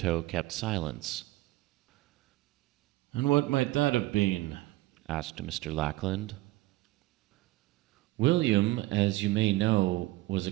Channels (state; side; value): quieter; left; 18.2 dB